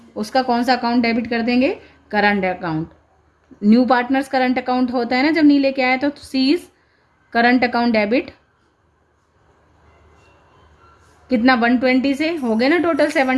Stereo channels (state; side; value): identical; both; correlation 1.00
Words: उसका कौन सा अकाउंट डेबिट कर देंगे, current account. New partners current account होता है ना जब नहीं लेके आया, तो सीज करंट अकाउंट डेबिट कितना 120 से हो गए ना, total